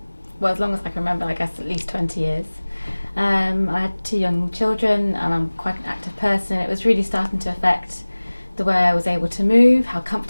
well, as long as I can remember, I guess at least 20 years. I had 2 young children and I'm quite an active person. It was really starting to affect the way I was able to move, how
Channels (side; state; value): both; inverted; correlation -1.00